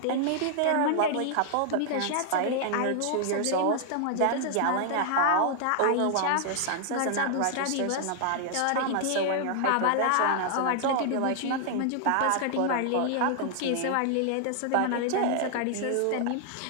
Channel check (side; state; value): both; different; correlation 0.00